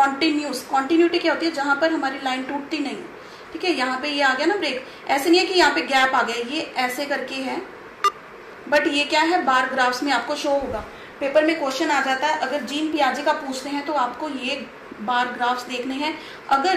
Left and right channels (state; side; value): identical; both; correlation 1.00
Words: कॉन्टिन्यूटी क्या होती है? जहां पर हमारी लाइन टूटती नहीं है, ठीक है। यहाँ पे ये आ गया ना ब्रेक, ऐसे नहीं है कि यहाँ पे गैप आ गया, ये ऐसे करके है, बट ये क्या है, बार ग्राफ्स में आपको शो होगा। पेपर में क्वेश्चन आ जाता है, अगर जीन पियाजे का पूछते हैं तो आपको ये बार ग्राफ्स देखने हैं,